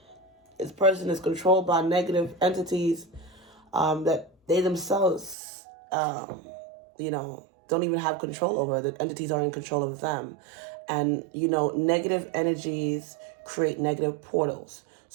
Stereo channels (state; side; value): drops out; left; at 5.4 s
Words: This person is controlled by negative entities that they themselves, don't even have control over. The entities are in control of them. And, negative energies create negative portals.